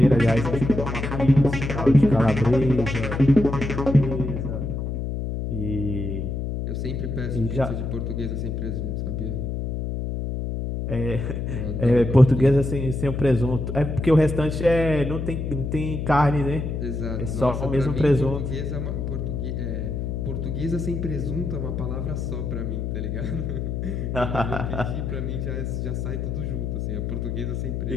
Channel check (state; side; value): noise; left; hum, 3 dB below the sound